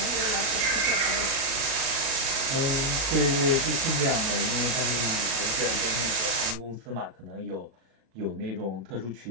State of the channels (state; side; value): late; left; 37 ms